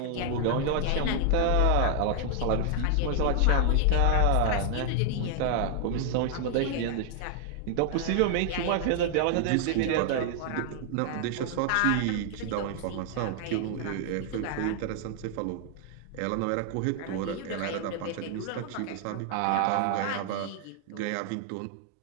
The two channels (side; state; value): both; different; correlation 0.00